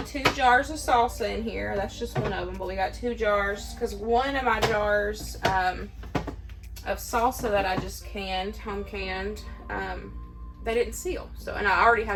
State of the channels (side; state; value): both; identical; correlation 1.00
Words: 2 jars of salsa in here. That's just one of them, but we got 2 jars because one of my jars of salsa that I just home canned, they didn't seal. So, and I already